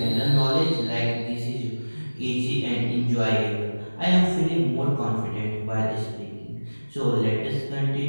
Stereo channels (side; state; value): both; inverted; correlation -1.00